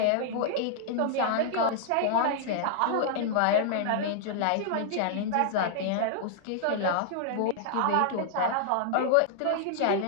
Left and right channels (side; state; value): both; different; correlation -0.01